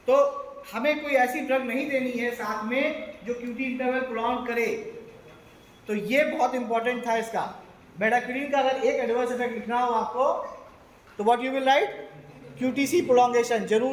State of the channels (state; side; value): identical; both; correlation 1.00